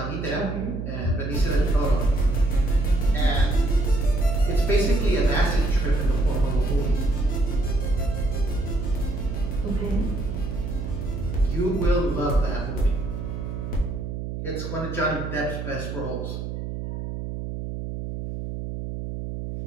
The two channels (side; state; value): right; noise; hum, 6 dB below the sound